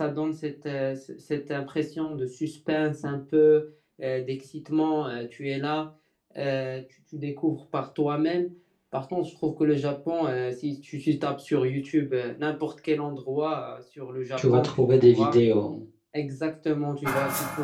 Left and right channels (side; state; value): both; identical; correlation 1.00